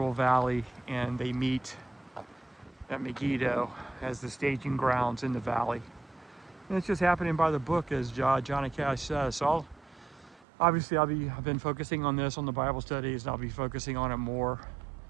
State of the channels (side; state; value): left; drops out; at 10.4 s